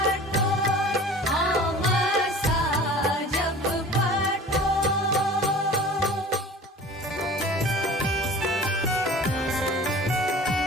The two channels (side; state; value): both; normal; correlation 0.42